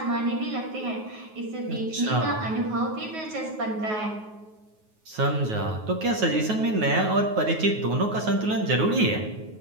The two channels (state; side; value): late; left; 9.4 ms